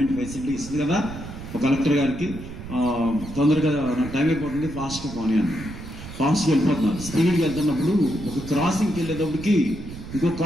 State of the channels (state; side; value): noise; right; rumble, 12 dB below the sound